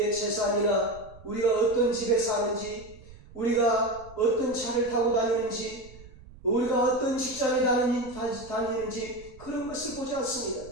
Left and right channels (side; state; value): right; noise; rumble, 20 dB below the sound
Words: 재산이나 우리가 어떤 집에 사는지, 우리가 어떤 차를 타고 다니는지, 우리가 어떤 직장에 다니는지 그런 것을 보지 않습니다.